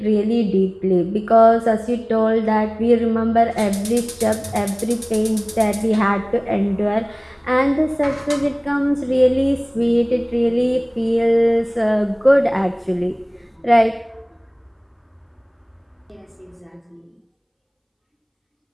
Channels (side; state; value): both; identical; correlation 1.00